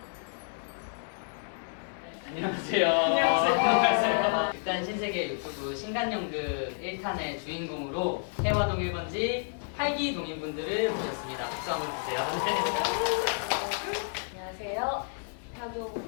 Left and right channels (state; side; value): silent; right; digital silence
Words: 안녕하세요. 안녕하세요. 일단 신세계 유튜브 신간연극 1탄의 주인공으로 해화동 1번지 활기 동인분들을 모셨습니다. 박수 한번 주세요. 안녕하세요.